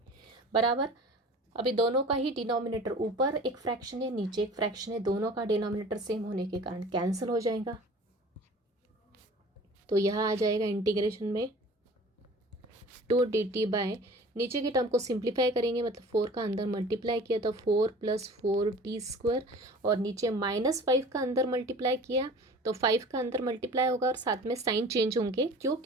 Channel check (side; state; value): both; normal; correlation 0.43